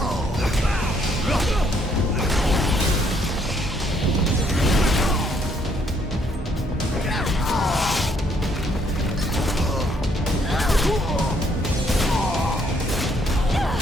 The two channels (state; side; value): normal; both; correlation 0.68